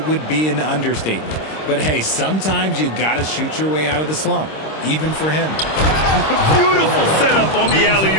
would be an understatement. But hey, sometimes you got to shoot your way out of the slump, even for him. Beautiful setup on the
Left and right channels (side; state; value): right; late; 26 ms